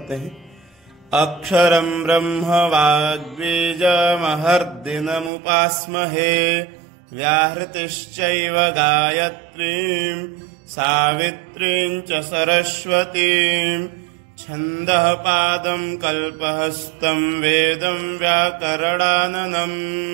हैं। अक्षरं ब्रह्म वाग्बीजमहर्दिनमुपास्महे व्याहृतिश्चैव गायत्रीं सावित्रीं च सरस्वतीं छन्दः पादं कल्पहस्तं वेदं व्याकरणाननं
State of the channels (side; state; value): left; drops out; at 5.3 s